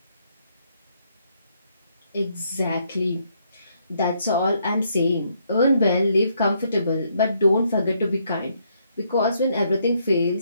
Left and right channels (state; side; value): inverted; both; correlation -0.73